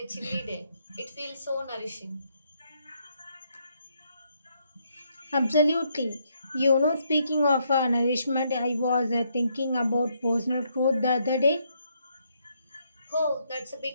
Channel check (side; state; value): both; inverted; correlation -0.75